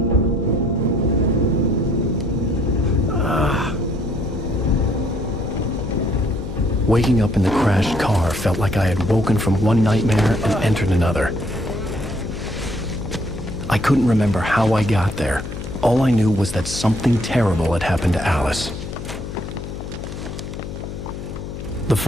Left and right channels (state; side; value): noise; left; hum, 8 dB below the sound